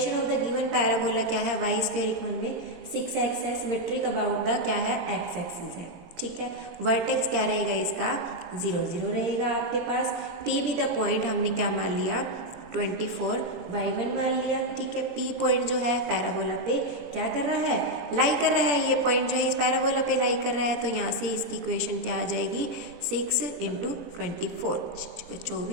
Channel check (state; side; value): late; left; 17 ms